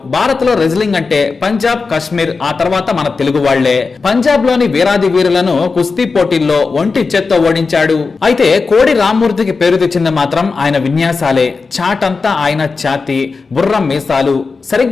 భారత్ లో రెజ్లింగ్ అంటే పంజాబ్, కాశ్మీర్, ఆ తర్వాత మన తెలుగు వాళ్లే. పంజాబ్ లోని వీరాది వీరులను కుస్తీ పోటీల్లో ఒంటి చేత్తో ఓడించాడు. అయితే కోడి రామ్మూర్తికి పేరు తెచ్చింది మాత్రం ఆయన విన్యాసాలే. చాటంతా ఆయన ఛాతి, బుర్రం మీసాలు.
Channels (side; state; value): right; quieter; 4.4 dB